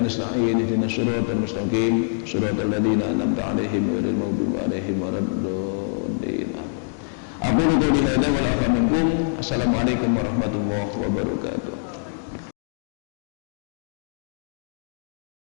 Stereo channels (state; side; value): silent; right; digital silence